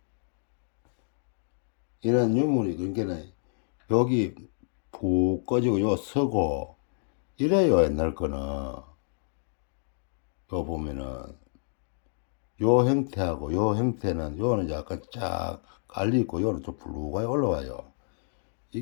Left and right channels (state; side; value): silent; right; digital silence